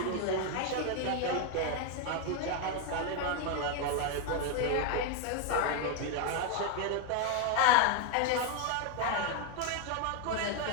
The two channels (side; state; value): both; different; correlation 0.01